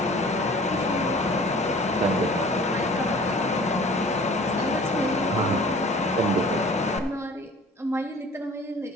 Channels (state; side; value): normal; both; correlation 0.47